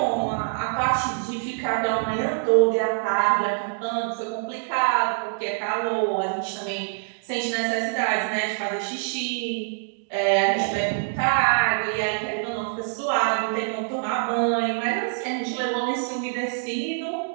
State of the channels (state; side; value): silent; left; digital silence